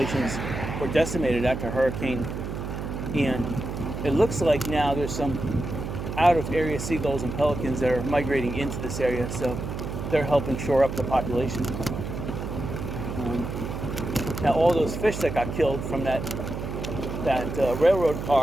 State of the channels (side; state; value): right; noise; hum, 6 dB below the sound